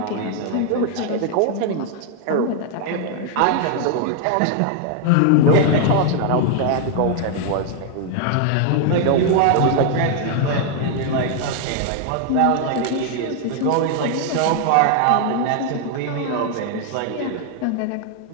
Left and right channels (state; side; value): different; both; correlation 0.00